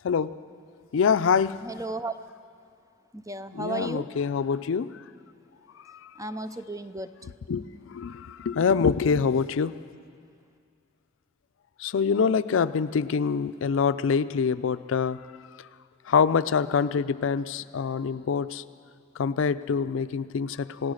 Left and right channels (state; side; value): quieter; right; 5.4 dB